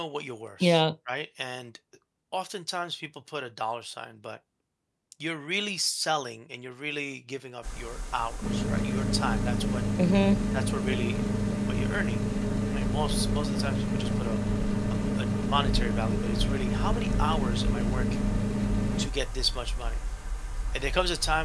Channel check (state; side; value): identical; both; correlation 1.00